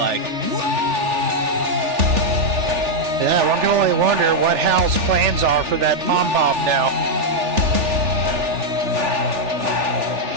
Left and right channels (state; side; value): late; left; 3.4 ms